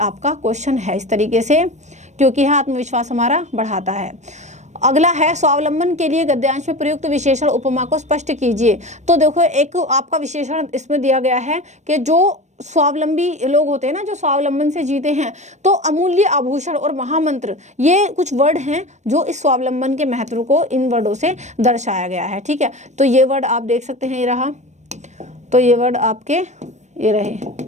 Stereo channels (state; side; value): late; left; 0.34 ms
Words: क्वेश्चन है इस तरीके से, क्योंकि आत्मविश्वास हमारा बढ़ाता है। अगला है, स्वावलंबन के लिए गद्यांश में प्रयुक्त विशेषण उपमा को स्पष्ट कीजिए। तो देखो, एक आपका विशेषण इसमें दिया गया है कि जो स्वावलंबी लोग होते हैं ना, जो स्वावलंबन से जीते हैं, तो अमूल्य आभूषण और महामंत्र, ये कुछ वर्ड हैं जो इस स्वावलंबन के महत्व को इन वर्डों से दर्शाया गया है। ठीक है, तो ये वर्ड आप देख सकते हैं, ये रहा। तो ये वर्ड आपके ये रहे